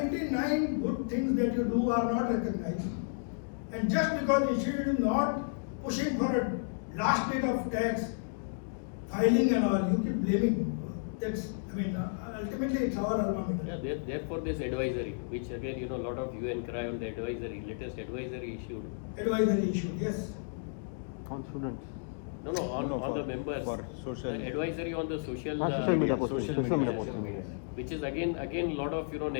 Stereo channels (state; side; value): silent; right; digital silence